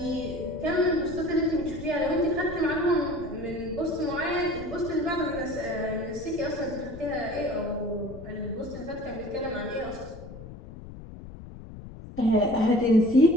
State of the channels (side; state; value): left; noise; rumble, 14 dB below the sound